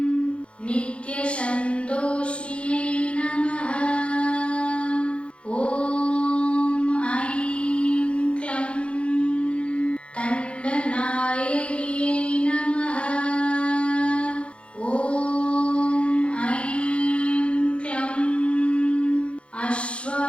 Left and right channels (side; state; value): right; late; 0.059 ms